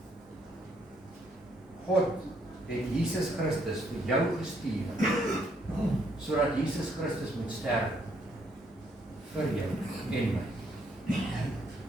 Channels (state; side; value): normal; both; correlation 0.71